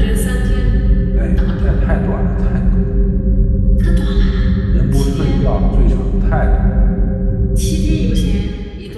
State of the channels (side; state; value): both; identical; correlation 1.00